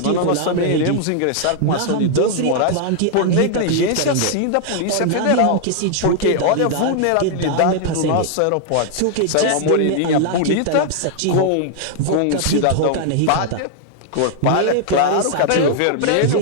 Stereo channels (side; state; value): both; different; correlation 0.00